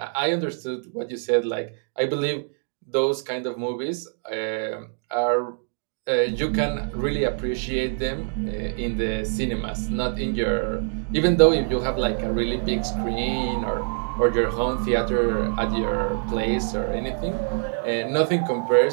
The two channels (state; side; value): silent; left; 57 dB below the other